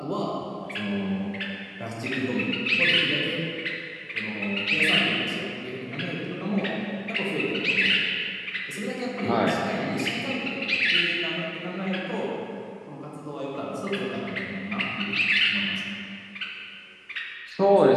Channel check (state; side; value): identical; both; correlation 1.00